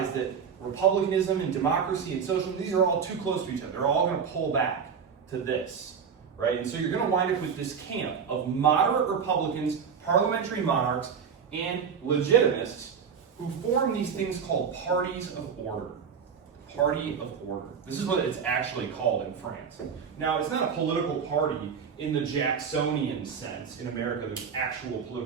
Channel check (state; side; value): quieter; left; 6.7 dB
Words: that republicanism and democracy and socialism, these are all too close to each other. They're all going to pull back to this, right? And so you're going to wind up with this camp of moderate Republicans, parliamentary monarchs, and legitimists who form these things called parties of order. Party of order. This is what it's actually called in France. Now, it's not a political party in the Jacksonian sense. In America, there's actual